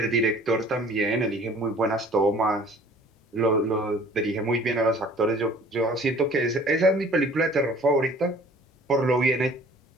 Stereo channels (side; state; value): both; normal; correlation 0.51